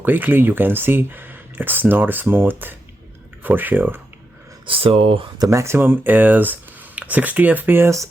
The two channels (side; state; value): both; normal; correlation 0.86